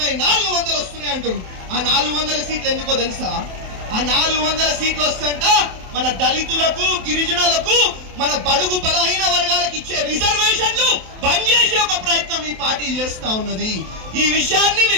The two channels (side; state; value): left; late; 27 ms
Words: 400 వస్తున్నాయి అంటారు. ఆ 400 సీట్లు ఎందుకో తెలుసా? ఆ 400 సీట్లు వస్తుంట మన దళితులకు, గిరిజనులకు, మన బడుగు బలహీన వర్గాలకు ఇచ్చే రిజర్వేషన్లు బంద్ చేసే ఒక ప్రయత్నం ఈ పార్టీ చేస్తా ఉన్నది. ఈ విషయాన్ని